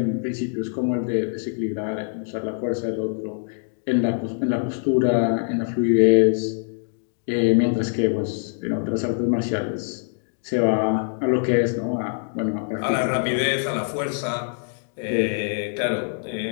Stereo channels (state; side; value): silent; right; 63 dB below the other